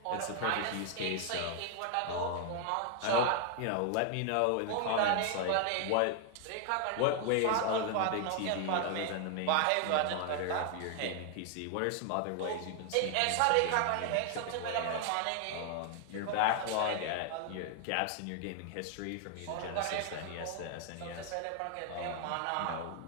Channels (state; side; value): different; both; correlation 0.00